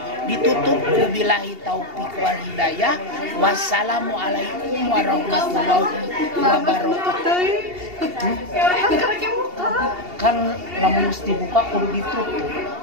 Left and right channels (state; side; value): late; left; 2.8 ms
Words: Ditutup billahi taufik wal hidayah. Wassalamualaikum warahmatullahi wabarakatuh. Kan lamun mesti buka kudu ditutup.